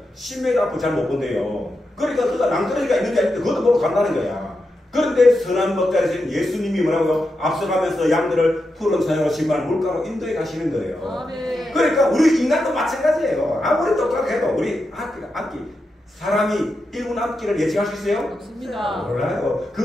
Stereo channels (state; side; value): normal; both; correlation 0.87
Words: 10m 앞을 잘 못 본대요. 그러니까 그가 낭떠러지가 있는지 아닌지 그것도 모르고 간다는 거야. 그런데 선한 목자이신 예수님이 뭐라고요? 앞서가면서 양들을 푸른 산으로 신발 물가로 인도해 가시는 거예요. 네. 그러니까 우리 인간도 마찬가지예요. 아무리 똑똑해도 우리 악기 사람이 1분 앞길을 예측할 수 있어요? 없습니다. 몰라요.